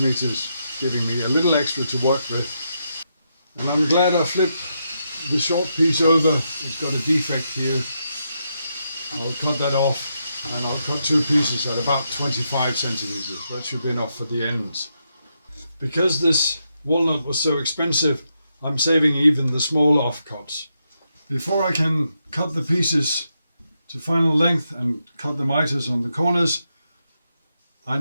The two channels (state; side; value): inverted; both; correlation -0.82